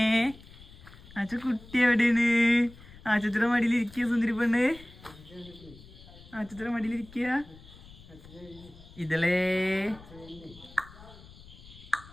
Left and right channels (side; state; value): left; noise; rumble, 20 dB below the sound